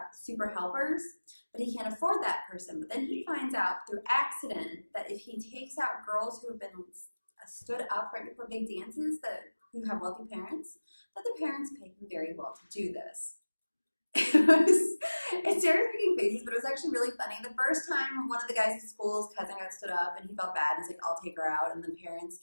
super helpers, but he can't afford that person. But then he finds out through accident that if he takes out girls who have been stood up right before big dances who have wealthy parents, that the parents pay him very well to do this. It's Sarah's making faces, but it was actually really funny. The first time one of the guys at school's cousin got stood up and he felt bad, he's like, I'll take her out. And the parents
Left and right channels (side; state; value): both; inverted; correlation -1.00